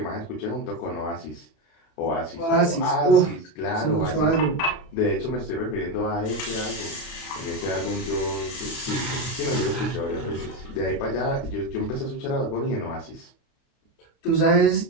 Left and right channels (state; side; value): late; right; 30 ms